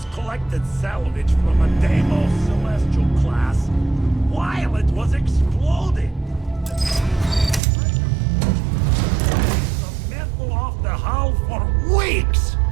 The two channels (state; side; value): drops out; left; at 7.6 s